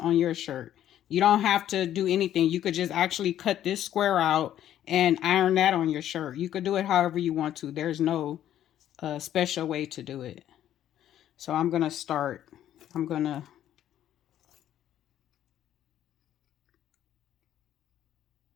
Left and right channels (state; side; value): quieter; right; 11.5 dB